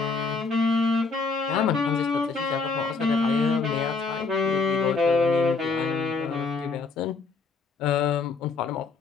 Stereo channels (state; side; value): quieter; right; 4.4 dB